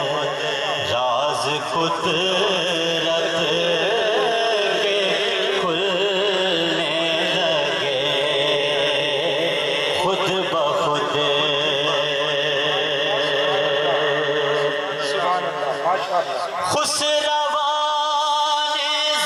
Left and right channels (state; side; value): identical; both; correlation 1.00